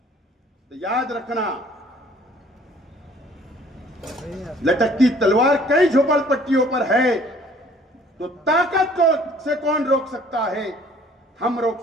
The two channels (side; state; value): both; normal; correlation 0.55